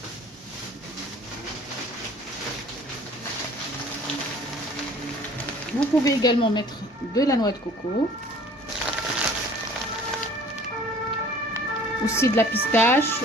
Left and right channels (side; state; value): both; normal; correlation 0.50